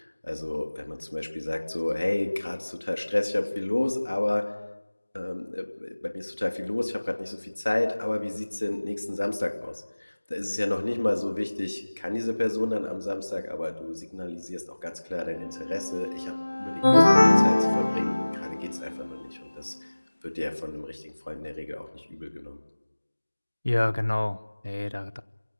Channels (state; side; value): inverted; both; correlation -1.00